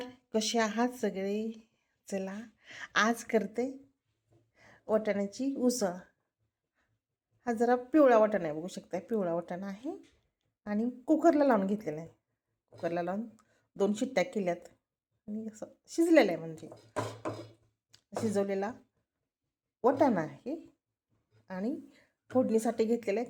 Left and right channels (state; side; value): identical; both; correlation 1.00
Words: कसे आहात सगळे? चला, आज करते वाटाण्याची उसळ. हा जरा पिवळा वाटाणा आहे, बघू शकता पिवळा वाटाणा आहे आणि कुकरला लावून घेतलेला आहे. कुकरला लावून 2 शिट्ट्या केल्यात आणि असं शिजलेलं आहे, म्हणजे शिजवलेला वाटाणा आहे. आणि फोडणीसाठी घेतलेला आहे